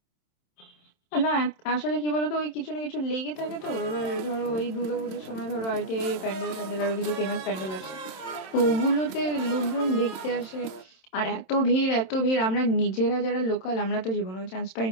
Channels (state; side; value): late; right; 26 ms